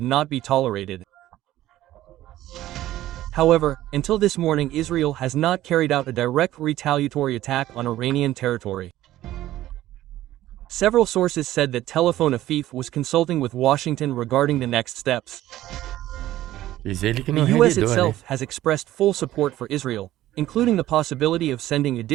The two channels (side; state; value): left; quieter; 14.4 dB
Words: not be tolerated. However, until this morning, Israel has not carried out a direct retaliatory attack on Iranian territory. Several sources said that Tel Avive was consulting with Washington regarding the next steps. Diz ele que The não U.S. revidou, né? itself has expressed full support for Israel, including the possibility of sending